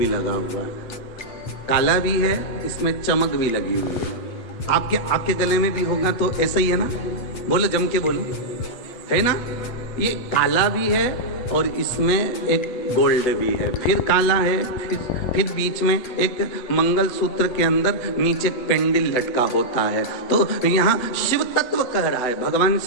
लगा हुआ है, काला भी है, इसमें चमक भी लगी हुई है। आपके गले में भी होगा तो ऐसा ही है ना? बोलो, जम के बोलो, है ना? ये काला भी है और इसमें एक गोल्ड भी है, फिर काला है, फिर बीच में एक मंगलसूत्र के अंदर नीचे पेंडिल लटका होता है। तो यहाँ शिव तत्व कह रहा है, भगवान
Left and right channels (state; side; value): late; right; 8.1 ms